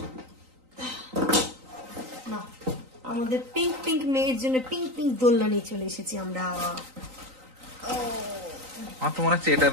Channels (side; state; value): left; late; 3.9 ms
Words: না, আমাদের পিঙ্ক পিঙ্ক মেয়ের জন্য পিঙ্ক পিঙ্ক দোলনা নিয়ে চলে এসেছি আমরা। আমার তো মনে হচ্ছে এটা